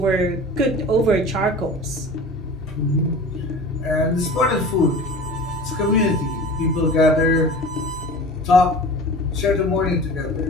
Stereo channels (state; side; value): normal; both; correlation 0.38